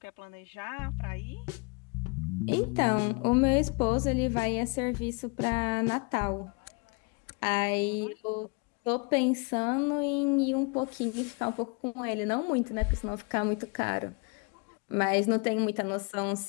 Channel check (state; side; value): quieter; right; 32.4 dB